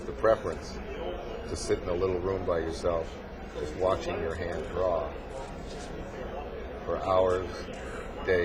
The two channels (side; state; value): both; identical; correlation 1.00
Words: the preference to sit in a little room by yourself, just watching your hand draw for hours,